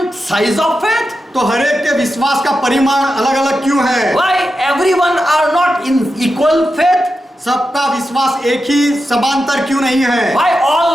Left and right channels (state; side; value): normal; both; correlation 0.90